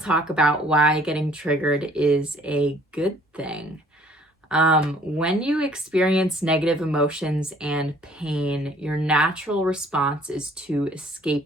talk about why getting triggered is a good thing. When you experience negative emotions and pain, your natural response is to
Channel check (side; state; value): both; normal; correlation 0.57